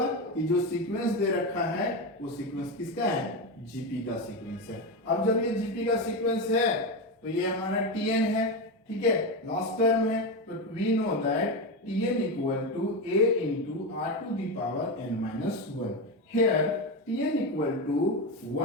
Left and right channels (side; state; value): both; normal; correlation 0.15